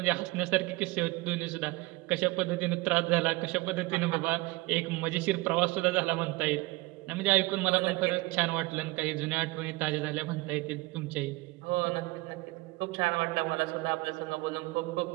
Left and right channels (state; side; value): quieter; left; 22.2 dB